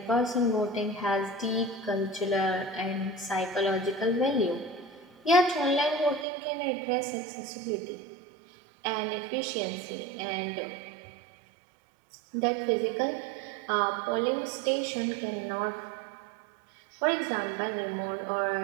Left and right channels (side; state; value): left; drops out; at 6.2 s